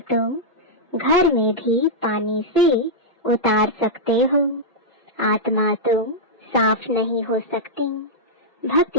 तुम घर में भी पानी से उतार सकते हो। आत्मा तुम साफ नहीं हो सकती।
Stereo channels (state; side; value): normal; both; correlation -0.07